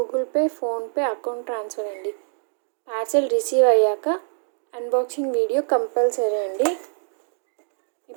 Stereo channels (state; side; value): silent; left; 62 dB below the other